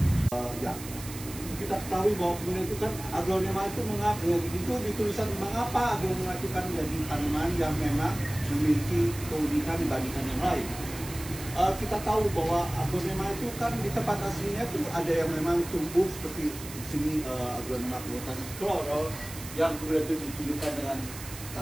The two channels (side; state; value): right; noise; hiss, 13 dB below the sound